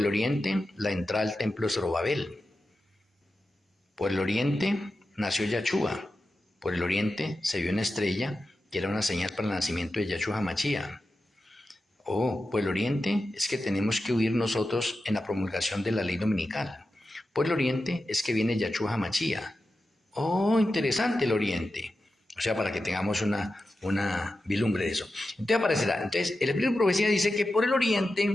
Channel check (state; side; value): normal; both; correlation 0.91